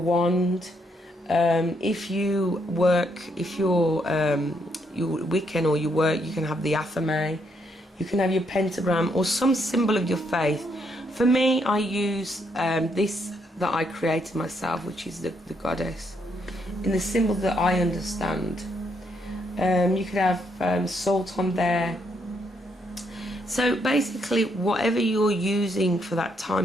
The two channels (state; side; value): normal; both; correlation 0.75